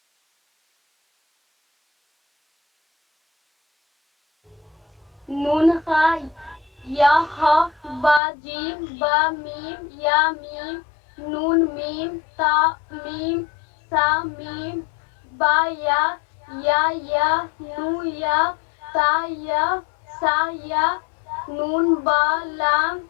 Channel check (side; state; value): right; drops out; at 8.2 s